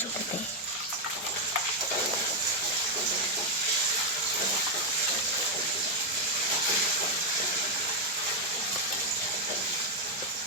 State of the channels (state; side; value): normal; both; correlation 0.01